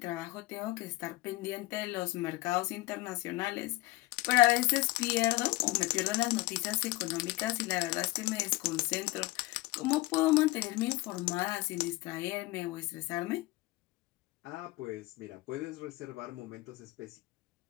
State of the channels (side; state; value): right; quieter; 19.8 dB